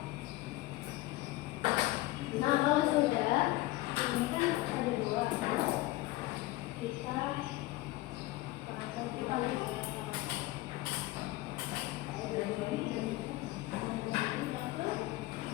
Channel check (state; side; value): quieter; right; 18.4 dB